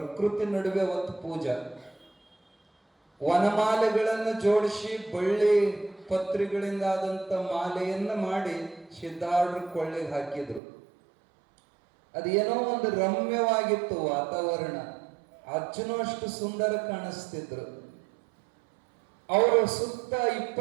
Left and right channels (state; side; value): drops out; left; at 10.6 s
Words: ನಡುವೆ ಒಂದು ಪೂಜಾ, ವನಮಾಲೆಗಳನ್ನು ಜೋಡಿಸಿ ಬಳ್ಳಿ ಪತ್ರಿಗಳಿಂದ ಆದಂತ ಮಾಲೆಯನ್ನ ಮಾಡಿ ಸಿದ್ಧಾರೂಢರ ಕೊಳ್ಳೆಗೆ ಹಾಕಿದ್ರು. ಅದೇನೋ ಒಂದು ರಮ್ಯವಾಗಿತ್ತು ವಾತಾವರಣ. ಅಜ್ಜನೂ ಅಷ್ಟು ಸುಂದರ ಕಾಣಿಸ್ತಿದ್ರು. ಅವರು ಸುತ್ತ